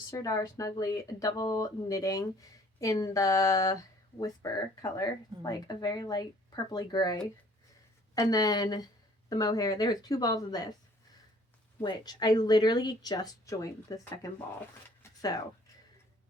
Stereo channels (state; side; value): normal; both; correlation 0.56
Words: Sirdar Snuggly double knitting in the Whisper color, like a very light purpley gray. And then the mohair, there was 2 balls of this, which I literally just joined the second ball. So,